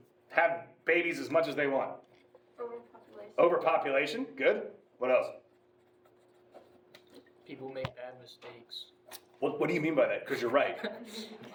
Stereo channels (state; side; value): identical; both; correlation 1.00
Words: have babies as much as they want? Overpopulation. Overpopulation, good. What else? People make bad mistakes. What do you mean by that? Because you're right.